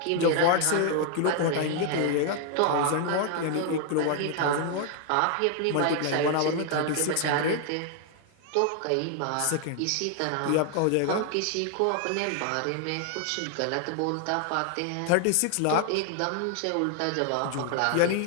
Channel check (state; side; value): different; both; correlation 0.00